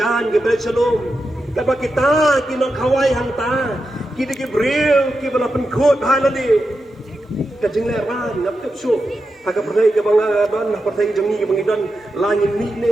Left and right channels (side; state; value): both; normal; correlation 0.89